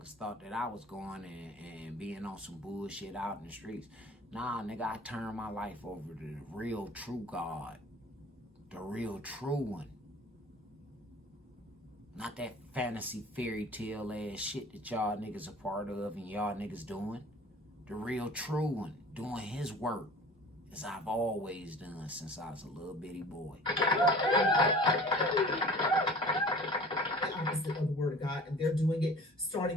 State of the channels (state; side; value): normal; both; correlation 0.44